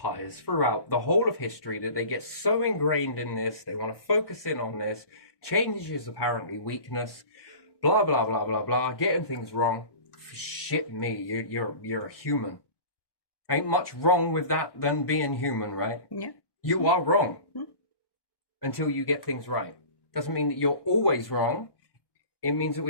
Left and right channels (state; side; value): late; right; 1.1 ms